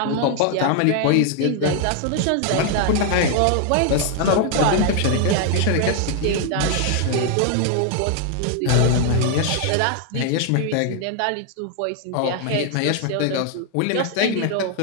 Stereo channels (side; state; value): both; different; correlation 0.00